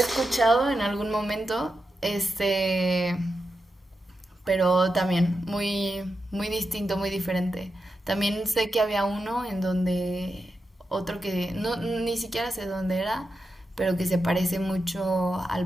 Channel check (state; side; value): normal; both; correlation 0.88